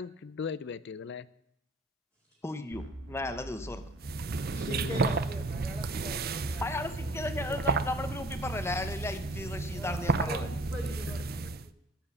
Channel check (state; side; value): normal; both; correlation 0.51